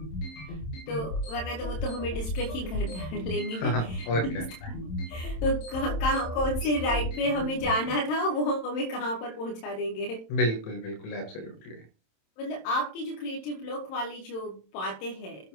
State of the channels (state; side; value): late; right; 27 ms